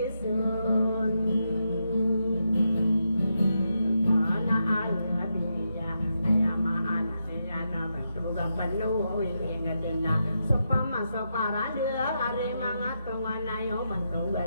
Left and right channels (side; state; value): both; inverted; correlation -0.84